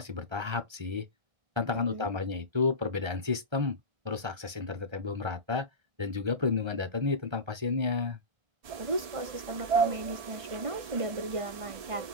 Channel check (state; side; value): late; left; 1.3 ms